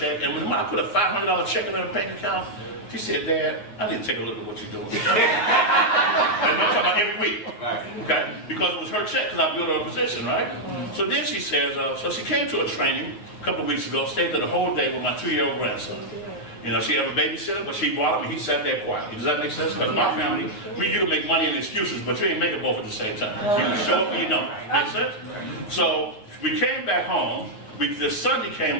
And when I put a $500 check in her bank account, she said, Dad, I need to take a look at what you're doing. And I'm talking about every week. Okay? Because it was her check, because I built her a position, right? So then she says, so she came to a training a couple of weeks ago, stayed there the whole day with my 2-year-old grandson. She had a babysitter, but she brought him and he sat there quietly. Does that make sense? Because my family, we used to make money and excuses, but you ain't make it both at the same time. You can show up and you don't. Make sense? So we came back home. The Sunday came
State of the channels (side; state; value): right; late; 9.9 ms